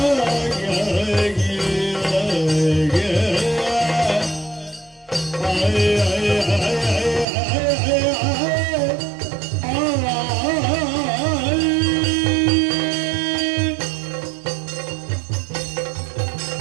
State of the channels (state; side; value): drops out; left; at 7.2 s